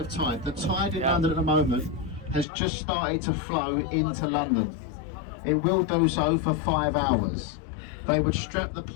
tide. The tide in London at the moment has just started to flow into London. It will do so for 5 hours. They would strap the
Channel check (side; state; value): right; drops out; at 2.5 s